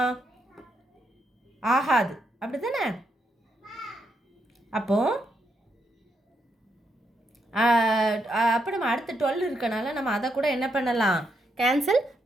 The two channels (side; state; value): both; normal; correlation 0.79